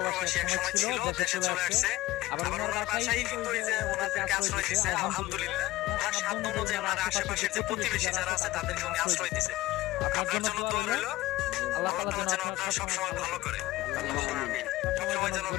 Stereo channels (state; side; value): quieter; right; 17.5 dB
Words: প্রবাসী এক সময় ছিল, দেশে চলে আসছে। আবার ওনার বাসায় কিন্তু এই যে ওনাদেরকে আশ্রয় দিচ্ছে, আলহামদুলিল্লাহ। ওনার সাধ্য অনুযায়ী ওনার আশেপাশের যে প্রতিবেশী যারা আছে তাদেরকে উনি আশ্রয় দিচ্ছে। আপনার জন্য দোয়া রইল, আল্লাহ তাআলা যেন আপনারা সবসময় ভালো করে, সবসময় যেন